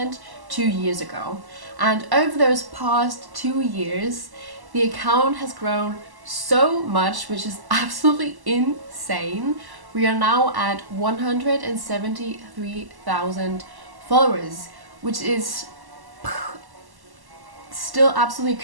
2 years ago. And over those past 2 years, the account has grown so much, which is absolutely insane. We are now at 173,000 followers, which is still absolutely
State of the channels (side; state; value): left; late; 1.1 ms